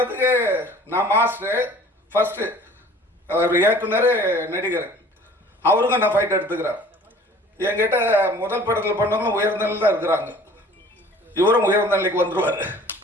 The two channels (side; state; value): both; normal; correlation 0.49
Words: நான் மாஸ்டர் ஃபஸ்ட்டு, அவர் இயக்குனர், நடிகர், அவருக்கும் நான் ஃபைட் எடுத்துக்கிறேன். என்கிட்ட முதல் படத்தில் பண்ணவங்களும் உயர்ந்த நிலையில் தான் இருக்கிறாங்க. இவரும் உயர்ந்த நிலைக்கு வந்துடுவார்.